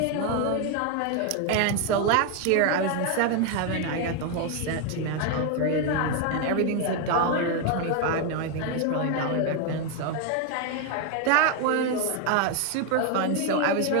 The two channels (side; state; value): both; different; correlation 0.01